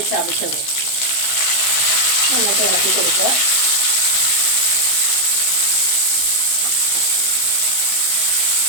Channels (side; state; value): right; late; 16 ms